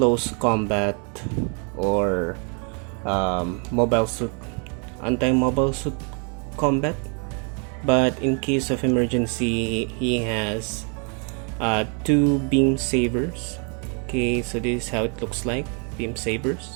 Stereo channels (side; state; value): left; quieter; 38.4 dB